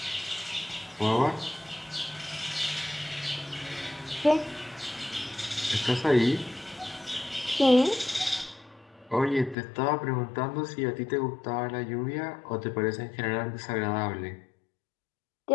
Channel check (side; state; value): right; drops out; at 9.6 s